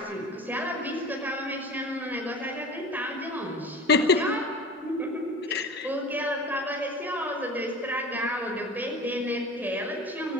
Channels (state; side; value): normal; both; correlation 0.36